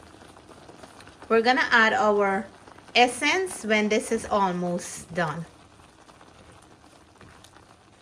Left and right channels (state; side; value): identical; both; correlation 1.00